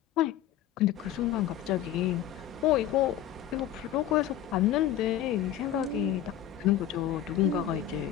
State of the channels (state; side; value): quieter; right; 11.2 dB